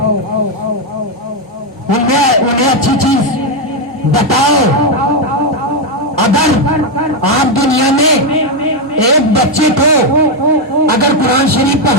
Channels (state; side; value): normal; both; correlation 0.04